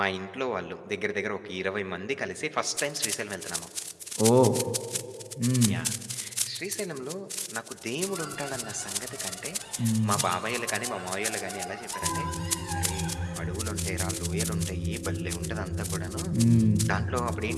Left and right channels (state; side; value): identical; both; correlation 1.00